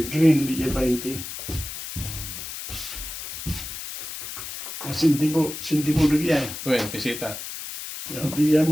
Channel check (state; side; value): noise; left; hiss, 8 dB below the sound